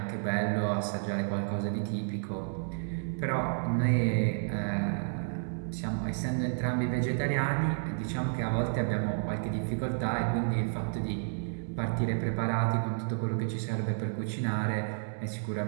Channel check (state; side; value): silent; left; digital silence